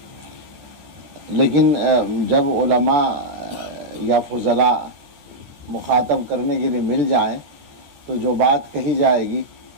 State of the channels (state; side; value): late; left; 13 ms